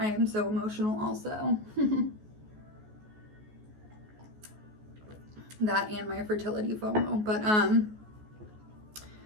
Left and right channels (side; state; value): left; late; 14 ms